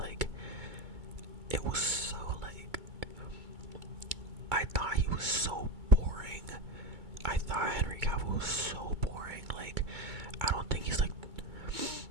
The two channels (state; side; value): late; left; 2.3 ms